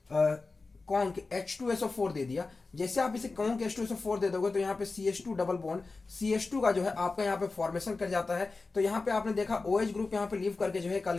H2SO4 दे दिया। जैसे आप इसे कॉन्क H2SO4 दे दोगे तो यहाँ पे CH2 डबल बॉन्ड CH2 का जो है आपका यहाँ पे फॉर्मेशन कर जाता है। तो यहाँ पे आपने देखा OH ग्रुप यहाँ पे लीव करके जो है एक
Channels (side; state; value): right; quieter; 3.8 dB